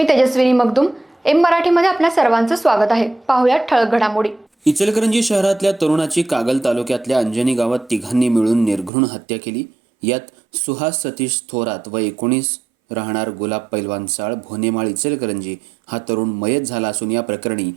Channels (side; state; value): left; drops out; at 8.9 s